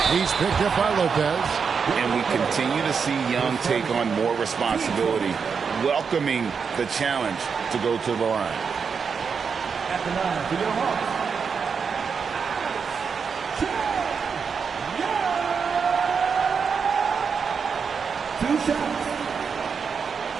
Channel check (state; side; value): quieter; left; 6.0 dB